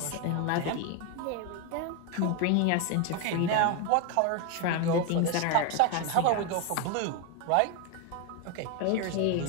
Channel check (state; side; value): different; both; correlation 0.01